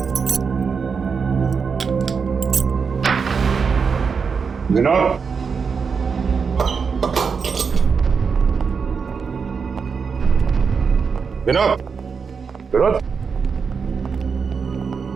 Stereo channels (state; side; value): quieter; left; 5.7 dB